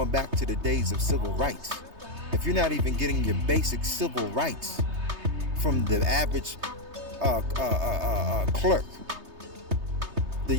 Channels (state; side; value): late; left; 3.2 ms